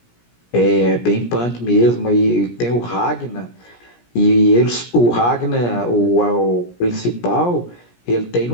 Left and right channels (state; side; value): late; right; 17 ms